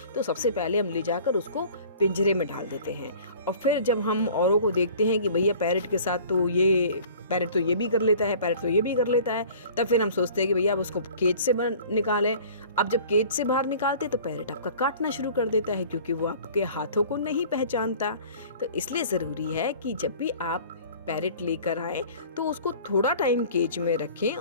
तो सबसे पहले हम ले जाकर उसको पिंजरे में डाल देते हैं, और फिर जब हम औरों को देखते हैं कि भैया पैरेट के साथ तो ये पैरेट तो ये भी कर लेता है, पैरेट तो ये भी कर लेता है, तब फिर हम सोचते हैं कि भैया अब उसको केज से निकालें। अब जब केज से बाहर निकालते तो पैरेट आपका काटना शुरू कर देता है, क्योंकि वो आपके हाथों को नहीं पहचानता। तो इसलिए ज़रूरी है कि जब भी आप पैरेट लेकर आए तो उसको थोड़ा टाइम केज में रखें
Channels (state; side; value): inverted; both; correlation -0.47